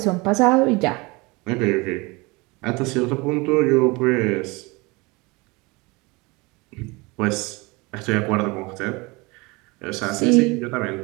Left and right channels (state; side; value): quieter; left; 25.2 dB